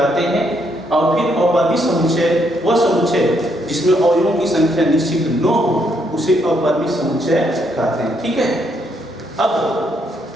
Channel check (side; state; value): both; normal; correlation 0.74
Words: हैं। और फिर अपरिमित समुच्चय वह समुच्चय जिसमें अवयवों की संख्या निश्चित न हो उसे अपरिमित समुच्चय कहते हैं। ठीक है, अब